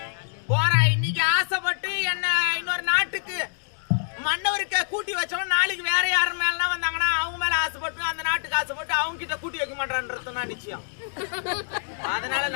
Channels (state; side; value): silent; right; digital silence